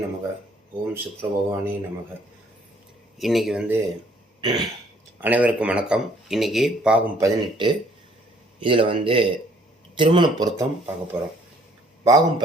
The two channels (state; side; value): normal; both; correlation 0.61